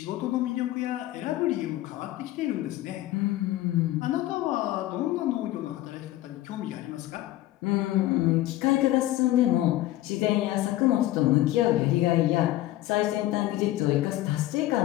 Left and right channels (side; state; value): right; quieter; 15.4 dB